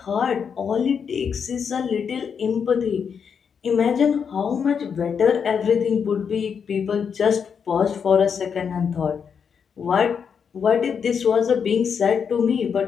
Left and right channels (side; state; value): right; quieter; 6.8 dB